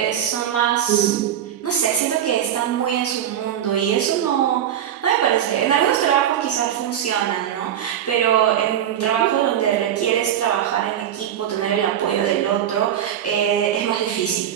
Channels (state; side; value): quieter; left; 10.3 dB